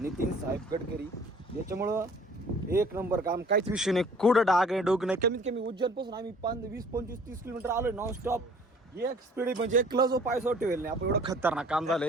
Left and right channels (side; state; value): both; normal; correlation 0.53